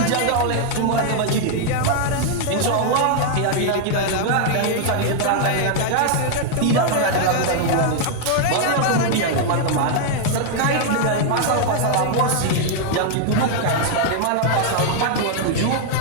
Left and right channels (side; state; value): both; different; correlation 0.00